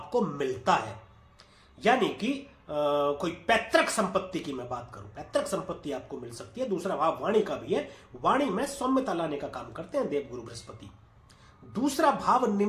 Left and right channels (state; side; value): identical; both; correlation 1.00